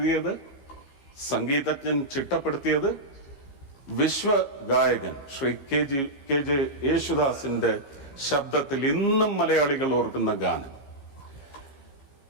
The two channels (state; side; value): late; right; 15 ms